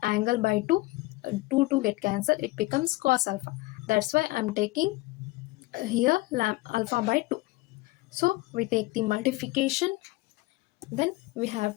angle by 2, 2 to get cancelled, it becomes cos alpha. That's why I am taking here alpha by 2. So we take the multiplication, then we have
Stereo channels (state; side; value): quieter; right; 20.6 dB